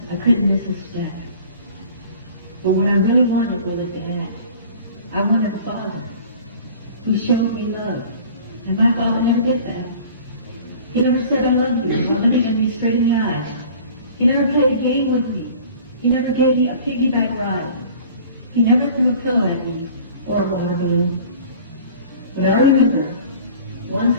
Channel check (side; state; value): both; inverted; correlation -0.46